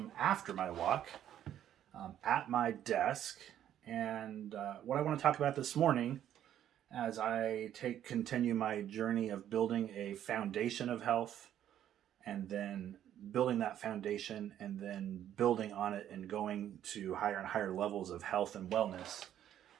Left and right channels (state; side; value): quieter; left; 10.9 dB